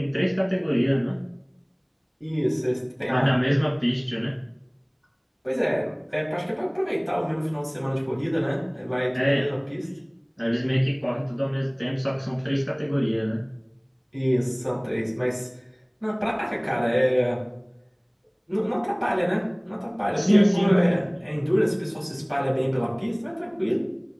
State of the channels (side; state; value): both; identical; correlation 1.00